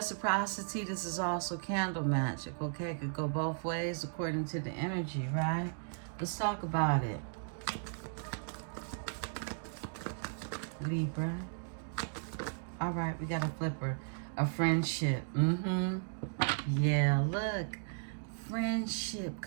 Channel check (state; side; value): silent; left; digital silence